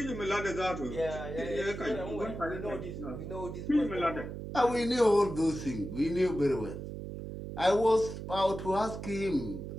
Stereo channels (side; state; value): right; noise; hum, 8 dB below the sound